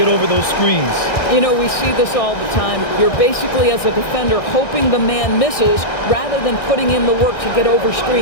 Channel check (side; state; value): right; late; 1.6 ms